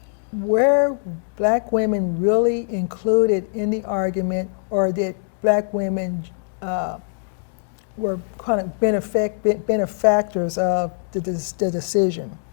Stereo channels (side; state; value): right; silent; digital silence